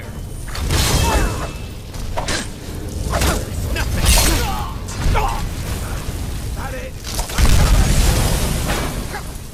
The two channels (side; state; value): both; identical; correlation 1.00